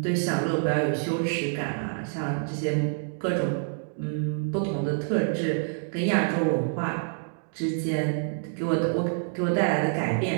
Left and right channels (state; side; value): silent; left; digital silence